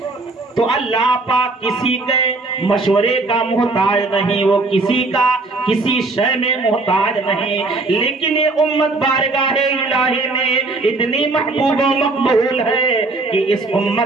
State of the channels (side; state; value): left; quieter; 3.3 dB